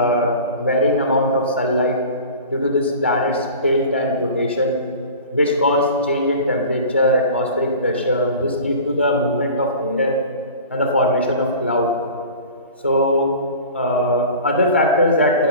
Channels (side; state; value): both; inverted; correlation -0.39